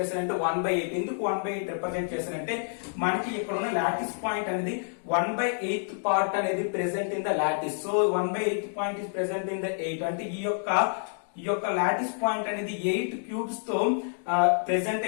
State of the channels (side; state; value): right; silent; digital silence